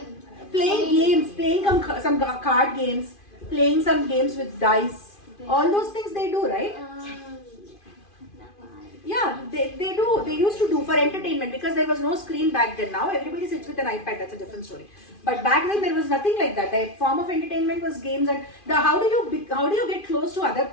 Playing games, playing some card games, playing some games with dice. All those things they do, right? Yeah, they do. They used to do for entertainment because there was no screen back then. Now everybody sits with an iPad. That's a different story. But back then there was nothing like that. The form of entertainment was games, and how do you get close to other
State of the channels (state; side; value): late; right; 2.5 ms